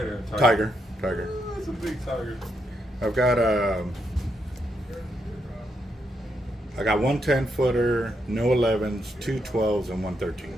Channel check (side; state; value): both; normal; correlation 0.80